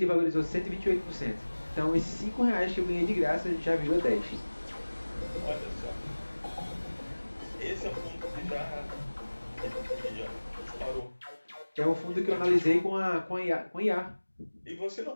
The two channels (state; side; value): inverted; both; correlation -1.00